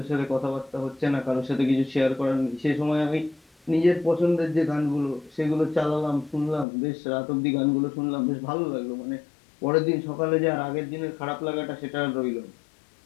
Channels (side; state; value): right; drops out; at 6.7 s